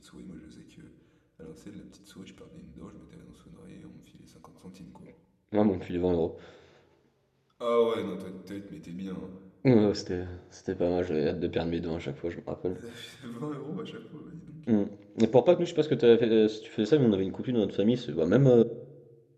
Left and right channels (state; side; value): identical; both; correlation 1.00